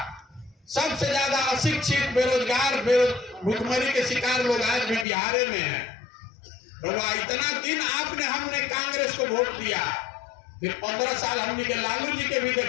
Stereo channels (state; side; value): drops out; right; at 5.1 s